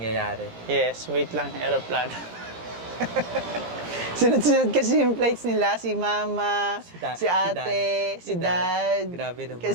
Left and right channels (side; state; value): left; late; 17 ms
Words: Yes, wait lang, aeroplano. Sunod-sunod kasi yung flights nila, si Mama, si Ate, si Dad. Grabe naman.